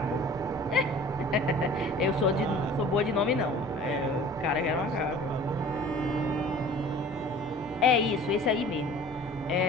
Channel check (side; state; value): both; normal; correlation 0.46